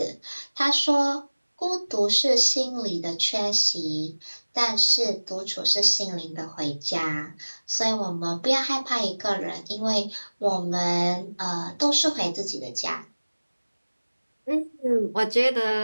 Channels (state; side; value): inverted; both; correlation -1.00